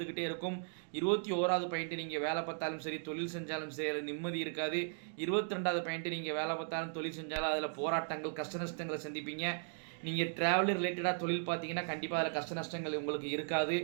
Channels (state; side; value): silent; left; digital silence